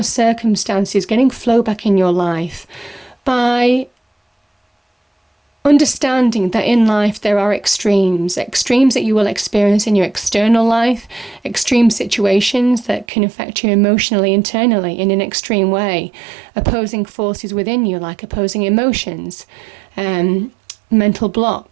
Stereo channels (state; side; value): drops out; left; at 13.1 s